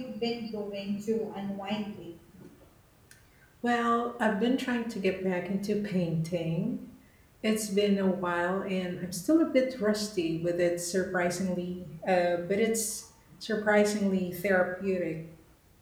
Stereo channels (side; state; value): both; identical; correlation 1.00